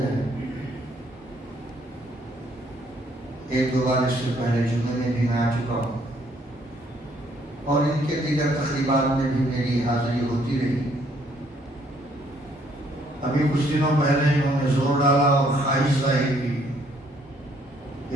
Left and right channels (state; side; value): normal; both; correlation 0.66